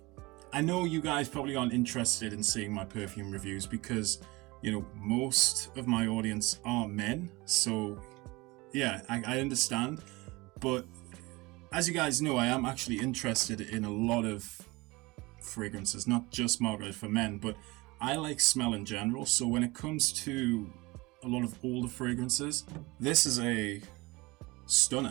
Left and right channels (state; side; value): quieter; left; 23.0 dB